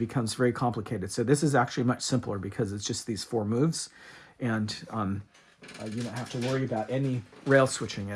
very complicated. So this is actually much simpler because it's just these 4 moves, and you don't have to worry about any rail switching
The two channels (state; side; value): identical; both; correlation 1.00